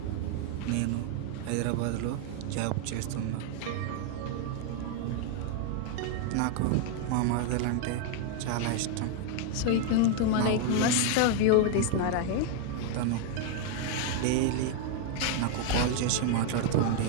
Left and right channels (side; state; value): both; different; correlation 0.00